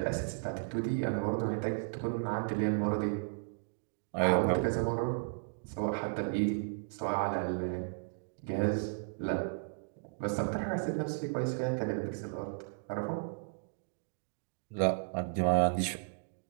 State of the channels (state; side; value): silent; left; digital silence